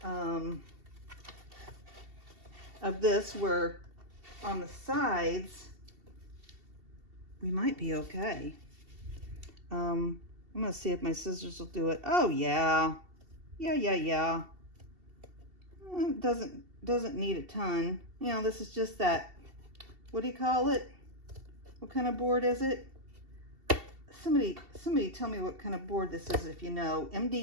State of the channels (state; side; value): late; left; 2.7 ms